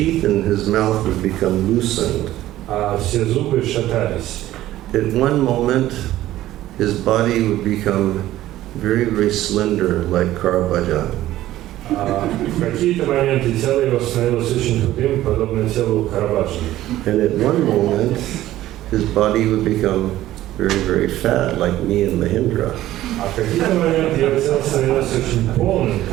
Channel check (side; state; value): left; quieter; 14.6 dB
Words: in his mouth would become loosened. а все зубы шатались. At one moment, his body would become very, very slender, like Caravaggio. В какие-то моменты тело его становилось очень худым, подобно телу Караваджо. And at one moment, his body would become very, very fat, like me and Mahindra. А в какие-то моменты его тело становилось очень полным,